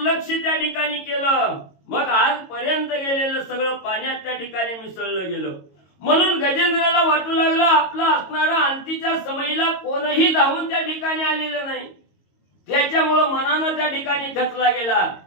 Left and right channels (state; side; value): late; right; 22 ms